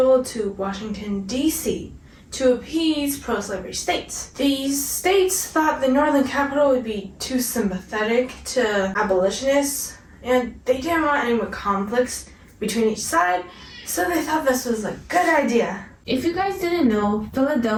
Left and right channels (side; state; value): both; identical; correlation 1.00